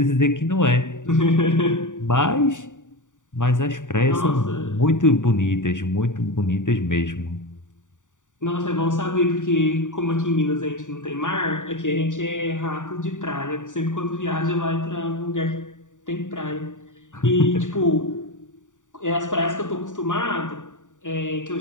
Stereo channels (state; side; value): late; right; 0.86 ms